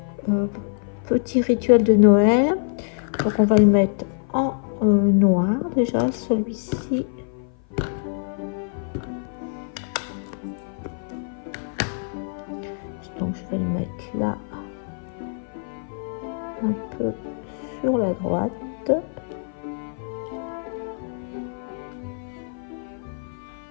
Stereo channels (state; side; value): silent; right; 55 dB below the other